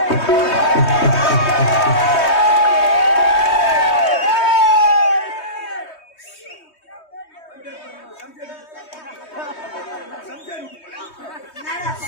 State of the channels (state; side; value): late; right; 3.2 ms